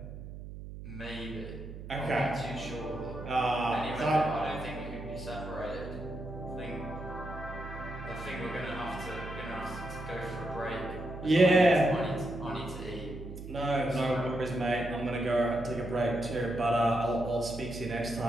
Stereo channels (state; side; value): noise; right; hum, 11 dB below the sound